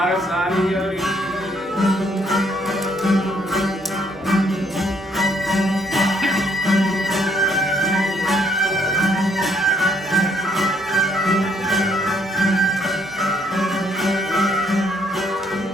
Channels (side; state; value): both; normal; correlation 0.68